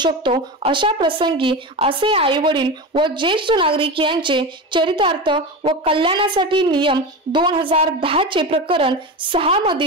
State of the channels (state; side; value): normal; both; correlation 0.23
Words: अशा प्रसंगी असे आई वडील व ज्येष्ठ नागरिक यांचे चरितार्थ व कल्याणासाठी नियम 2010 चे प्रकरण 6